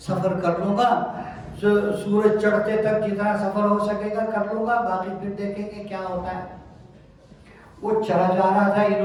کر لوں گا، سورج چڑھتے تک جتنا سفر ہو سکے گا کر لوں گا، باقی پھر دیکھیں گے کیا ہوتا ہے۔ وہ چلا جا رہا تھا،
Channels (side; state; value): both; identical; correlation 1.00